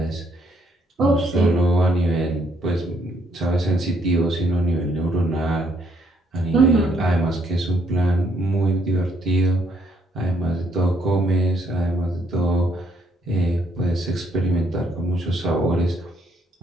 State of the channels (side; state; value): both; normal; correlation 0.70